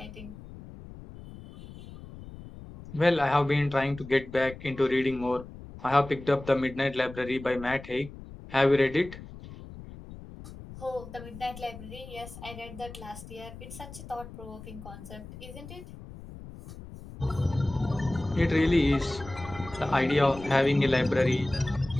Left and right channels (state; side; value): noise; left; rumble, 15 dB below the sound